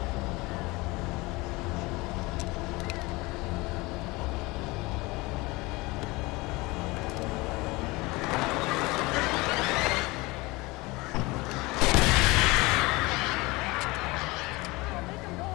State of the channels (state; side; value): quieter; right; 22.9 dB